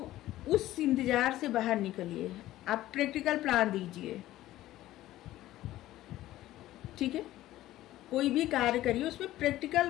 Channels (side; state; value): right; quieter; 15.0 dB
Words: उस इंतजार से बाहर निकलिए, आप प्रैक्टिकल प्लान दीजिए। ठीक है, कोई भी कार्य करिए उसमें प्रैक्टिकल